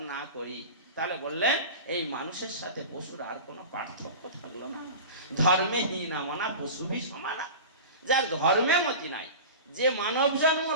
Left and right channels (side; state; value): both; inverted; correlation -0.32